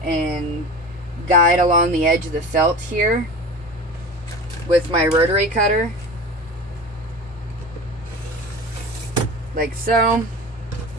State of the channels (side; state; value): both; normal; correlation 0.33